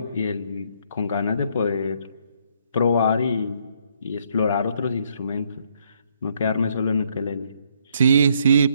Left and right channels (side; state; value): both; inverted; correlation -0.70